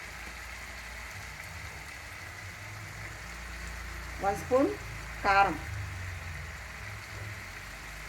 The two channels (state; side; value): identical; both; correlation 1.00